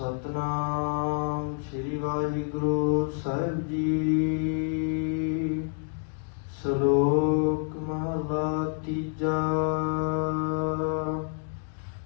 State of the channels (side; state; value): right; silent; 58 dB below the other